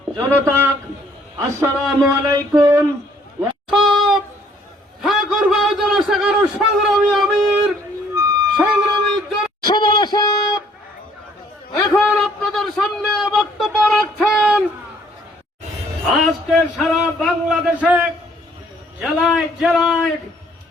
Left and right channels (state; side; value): normal; both; correlation 0.62